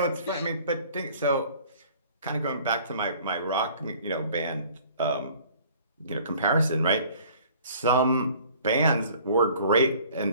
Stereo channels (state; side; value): inverted; both; correlation -0.52